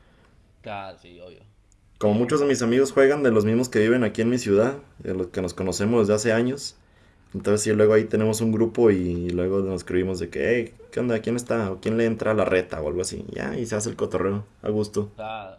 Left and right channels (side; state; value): both; identical; correlation 1.00